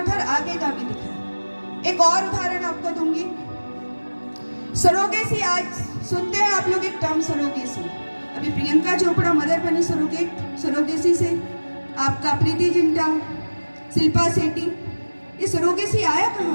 था, आगे का भी दिखाए? एक और उदाहरण आपको दूंगी, सरोगेसी। आज सुनते हैं आप लोग एक टर्म सरोगेसी। अभी प्रियंका चोपड़ा मदर बनी सरोगेसी से, आपका प्रीति जिंटा, शिल्पा शेट्टी। ये सरोगेसी आया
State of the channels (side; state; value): both; inverted; correlation -1.00